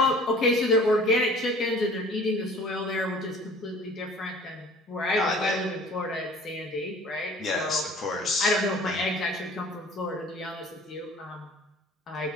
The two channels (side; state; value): both; normal; correlation 0.49